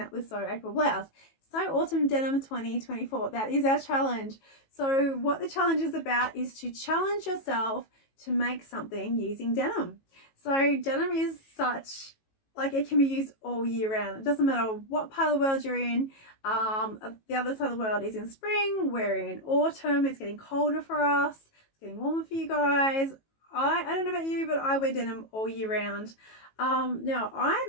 with Sew April Blouse. Sew Autumn Denim 2024. That is our challenge. So what the challenge is about is to challenge yourself to make something using denim. So denim is such, like, it can be used all year round. It doesn't matter what part of the world you're in. The other side of the world is in spring. We're in autumn. It's getting colder for us. It's getting warmer for you guys. I don't know about you, but I wear denim all year round. Now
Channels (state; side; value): late; right; 18 ms